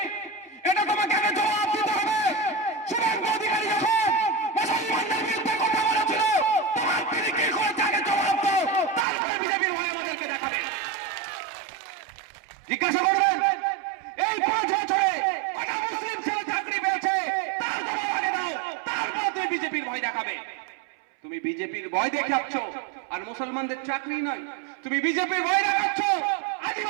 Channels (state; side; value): drops out; left; at 9.1 s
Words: এটা তোমাকে আগে জবাব দিতে হবে। শুভেন্দু অধিকারী যখন মুসলমানদের বিরুদ্ধে কথা বলেছিল, তোমার তিনি কি করেছে আগে জবাব দাও, তারপরে বিজেপির ভয় আমাদেরকে দেখাবে। জিজ্ঞাসা করবেন এই 5 বছরে কটা মুসলিম ছেলে চাকরি পেয়েছে, তার জবাব আগে দাও, তারপর তুমি বিজেপির ভয় দেখাবে। তুমি বিজেপির ভয় দেখাচ্ছ আর মুসলমানদের চাকরি নয়, তুমি বিজেপির ভয় দেখাচ্ছ,